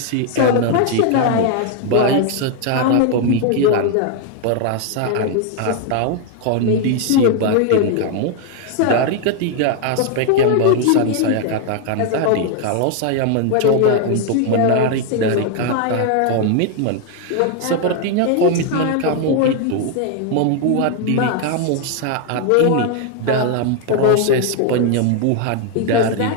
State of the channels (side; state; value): both; different; correlation 0.00